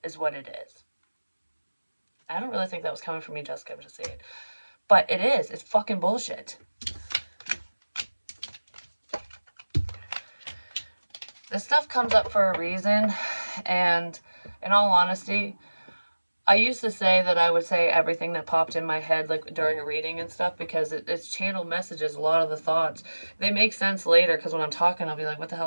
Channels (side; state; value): both; inverted; correlation -1.00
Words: is what it is. I don't really think that was coming from me, Jessica. I'm just saying. But it is. It's fucking bullshit. This stuff comes up for a reason, and in all honesty, I used to say that I would say everything that popped in my head, like during a reading and stuff, because it's channeled messages. A lot of the thoughts, they make sense later, because when I'm talking, I'll be like, what the